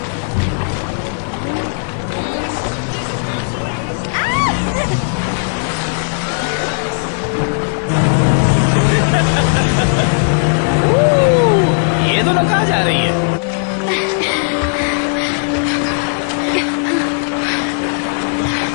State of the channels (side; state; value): right; silent; digital silence